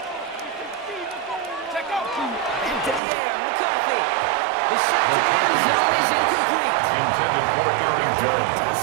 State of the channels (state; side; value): drops out; left; at 3.0 s